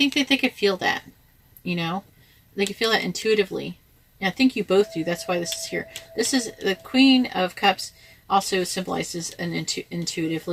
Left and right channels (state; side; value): identical; both; correlation 1.00